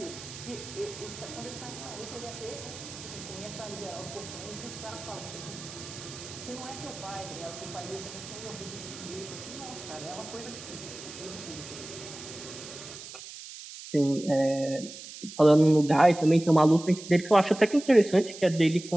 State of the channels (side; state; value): right; noise; hiss, 13 dB below the sound